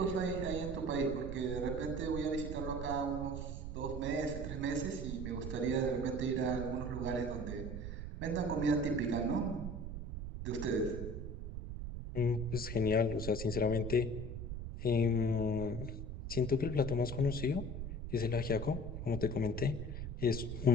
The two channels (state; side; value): noise; right; rumble, 6 dB below the sound